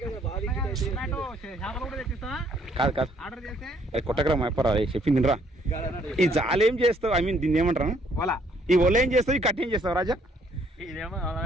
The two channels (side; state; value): both; normal; correlation 0.65